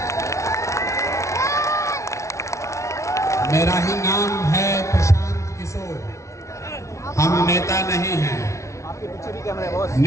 मेरा ही नाम है प्रशांत किशोर। हम नेता नहीं हैं,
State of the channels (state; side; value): late; right; 0.14 ms